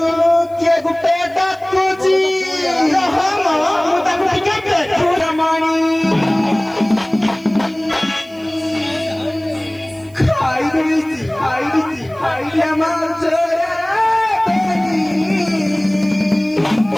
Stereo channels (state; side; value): noise; right; hiss, 29 dB below the sound